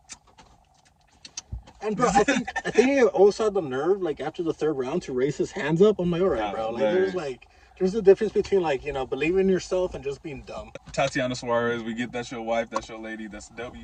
And bro, I think he also had the nerve, like after the third round, to raise his hands up. I'm like, all right, bro. Like, there's a difference between like, you know, believing in yourself and just being dumb. Tatiana Suarez, we get that's your wife, that's your lady, that's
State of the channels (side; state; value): both; identical; correlation 1.00